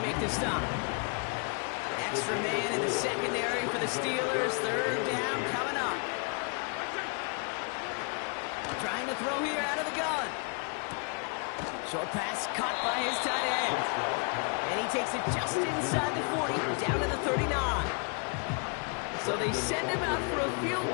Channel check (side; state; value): right; quieter; 38.3 dB